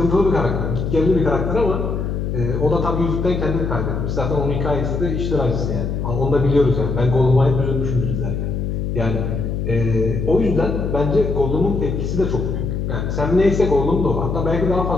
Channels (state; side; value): noise; left; hum, 2 dB below the sound